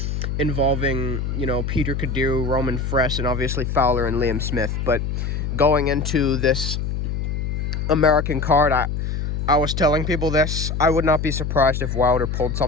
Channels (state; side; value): noise; left; hum, 2 dB below the sound